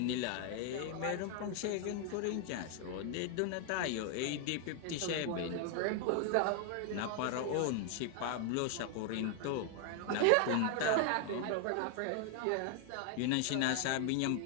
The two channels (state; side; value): different; both; correlation 0.00